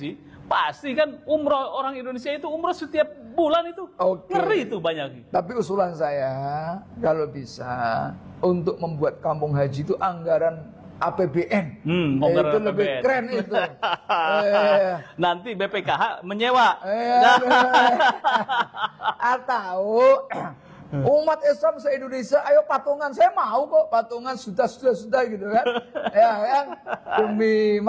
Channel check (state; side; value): identical; both; correlation 1.00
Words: pasti kan umroh, orang Indonesia itu umroh setiap bulan itu. Ngeri itu banyak. Tapi usulan saya kalau bisa untuk membuat kampung haji itu anggaran APBN. Itu lebih keren itu. Nanti BPKH menyewa. Atau umat Islam se-Indonesia, ayo patungan, saya mau kok patungan sudah gitu kan. Ya kan, demi